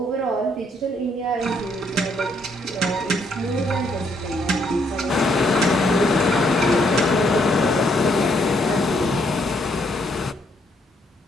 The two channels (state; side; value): normal; both; correlation 0.71